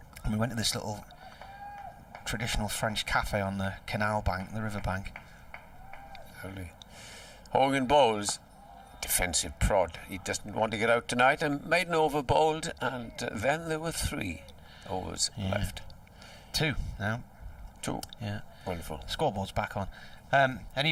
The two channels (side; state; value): both; identical; correlation 1.00